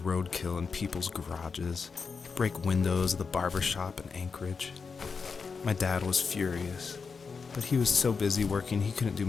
in people's garages, break windows of the barber shop in Anchorage. My dad was furious, but he was so busy working he couldn't do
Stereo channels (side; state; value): right; quieter; 5.3 dB